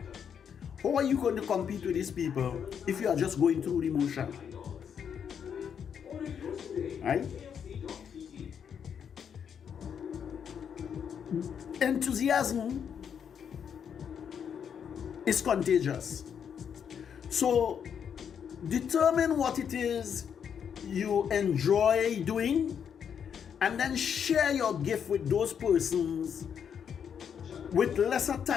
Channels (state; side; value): quieter; right; 7.8 dB